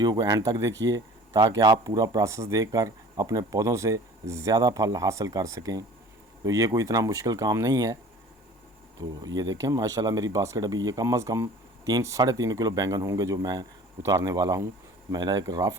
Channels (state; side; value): normal; both; correlation 0.46